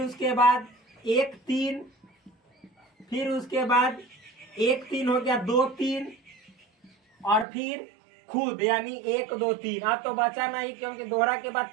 उसके बाद 1 3, फिर उसके बाद 1 3 हो गया, 2 3, और फिर खुद यानी 1 2 3। अब तो बचा नहीं क्योंकि दोहरा के बाद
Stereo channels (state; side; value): drops out; left; at 7.5 s